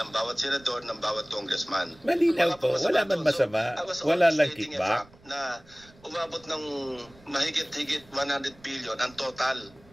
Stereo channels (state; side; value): noise; right; rumble, 26 dB below the sound